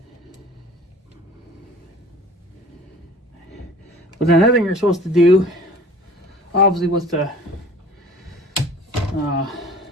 But then another thing you're supposed to do, obviously, was the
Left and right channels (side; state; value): both; normal; correlation 0.46